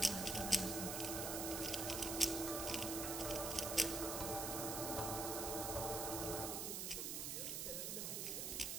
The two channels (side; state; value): right; noise; hiss, 1 dB below the sound